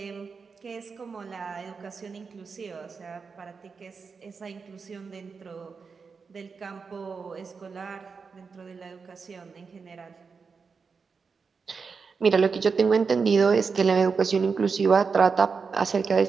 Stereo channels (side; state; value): left; quieter; 5.2 dB